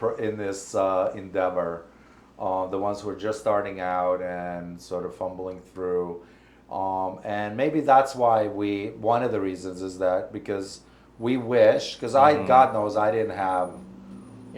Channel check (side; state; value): both; identical; correlation 1.00